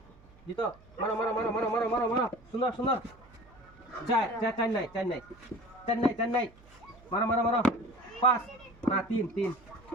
জিতো। মারো সুন্দর। 4 নাই। মারো। 5 না 3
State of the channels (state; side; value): noise; right; hum, 26 dB below the sound